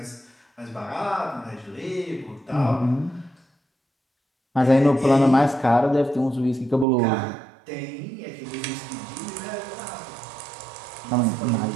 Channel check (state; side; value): drops out; left; at 6.9 s